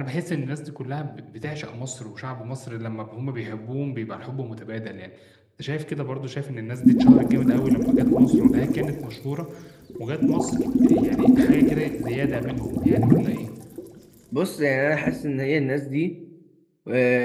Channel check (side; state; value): both; identical; correlation 1.00